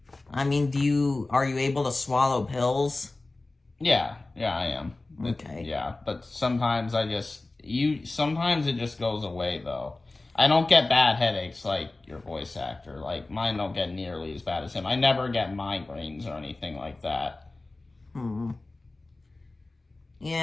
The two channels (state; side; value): quieter; right; 3.1 dB